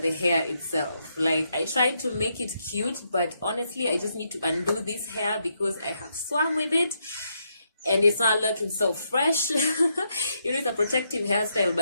the hair itself. Like, I tried to make it cute, but honestly, I just need to undo this hair because I have swam with it and it's not looking so fresh. You know, it's a protective hairstyle,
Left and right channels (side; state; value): both; inverted; correlation -0.79